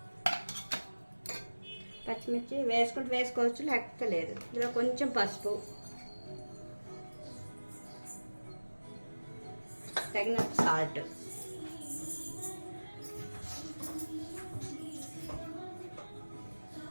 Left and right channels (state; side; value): inverted; both; correlation -1.00